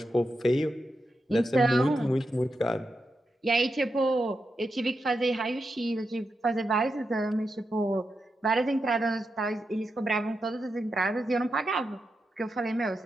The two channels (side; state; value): both; normal; correlation 0.87